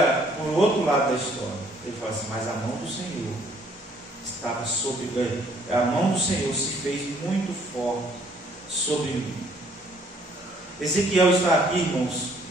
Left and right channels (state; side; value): normal; both; correlation 0.62